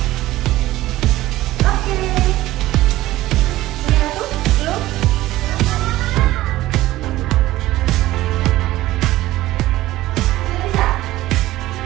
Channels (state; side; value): quieter; left; 16.2 dB